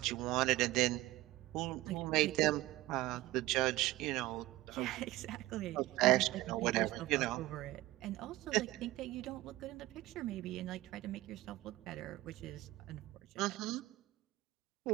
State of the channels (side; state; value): left; quieter; 18.0 dB